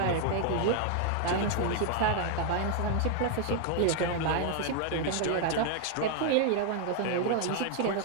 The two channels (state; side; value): different; both; correlation 0.00